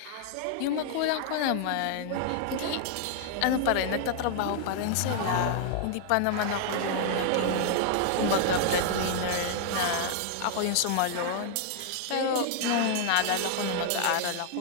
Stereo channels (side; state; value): both; different; correlation -0.01